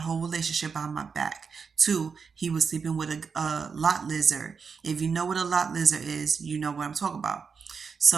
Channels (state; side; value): quieter; left; 5.7 dB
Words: relationship behind my back. Two, he was sleeping with a lot lizard. If you know what a lot lizard is, you know what I'm talking about.